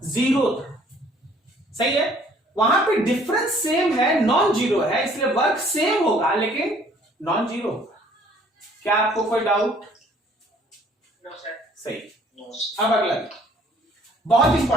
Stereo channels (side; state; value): both; normal; correlation 0.58